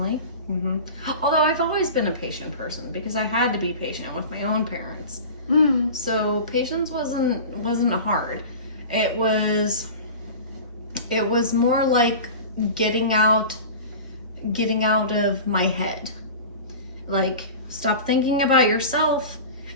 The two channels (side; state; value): both; inverted; correlation -0.34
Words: Although I've always been a patient person because I had to be patient with my own parents. So patience wasn't hard. It was more like getting out of my head. Like, stop thinking about yourself